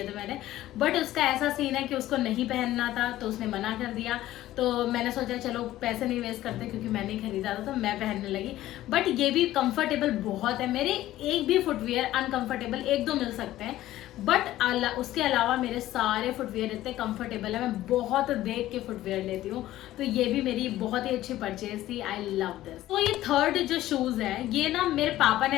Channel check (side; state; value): right; quieter; 14.7 dB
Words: थे मैंने. बट उसका ऐसा सीन है कि उसको नहीं पहनना था, तो उसने मना कर दिया. तो मैंने सोचा चलो पैसे नहीं वेस्ट करते, क्योंकि मैंने ही खरीदा था तो मैं पहनने लगी. बट ये भी कंफर्टेबल बहुत है. मेरे एक भी फुटवियर अनकंफर्टेबल 1-2 मिल सकते हैं, बट उसके अलावा मेरे सारे फुटवियर इतने कंफर्टेबल है. मैं बहुत देख के फुटवियर लेती हूँ. तो ये भी मेरी बहुत ही अच्छी परचेज थी. I love this. तो ये 3rd जो शूज है, ये ना मेरे पापा ने